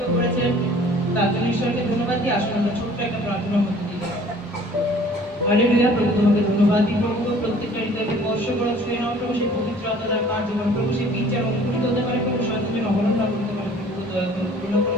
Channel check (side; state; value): both; normal; correlation 0.51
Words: করেছেন তার জন্য ঈশ্বরকে ধন্যবাদ দিই। আসুন আমরা ছোট্ট একটা প্রার্থনার মধ্যে দিয়ে যাই। হালেলুয়া। প্রভু তোমাকে ধন্যবাদ দিই প্রভু, প্রত্যেকটা হৃদয়কে স্পর্শ করো, ছুঁয়ে নাও প্রভু। সেই পবিত্র আত্মার কার্যক্রম প্রভু, সেই বীজ যেন অঙ্কুরিত হতে পারে প্রভু, সন্তান অবলম্বন না করতে পারে প্রভু, দয়া করে করুণা করে